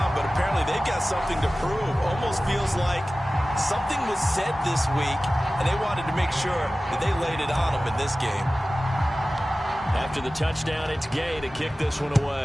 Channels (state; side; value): normal; both; correlation 0.96